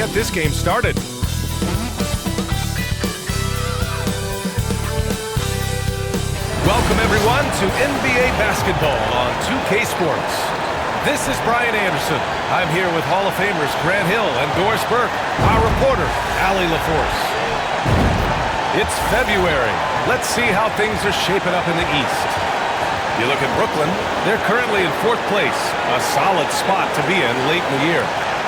this game started. Welcome everyone to NBA basketball on 2K Sports. This is Brian Anderson. I'm here with Hall of Famers Grant Hill and Doris Burke, our reporter, Allie LaForce. It's February. Let's see how things are shaping up in the East. You look at Brooklyn, they're currently in 4th place, a solid spot to be in late in the year.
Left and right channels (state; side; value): identical; both; correlation 1.00